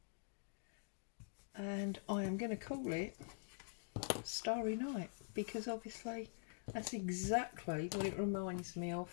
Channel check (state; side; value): silent; right; digital silence